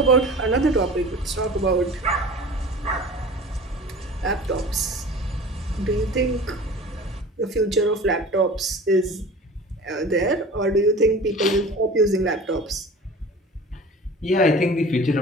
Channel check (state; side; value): normal; both; correlation 0.40